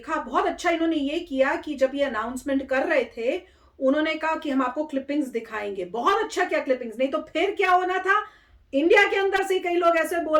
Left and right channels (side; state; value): both; identical; correlation 1.00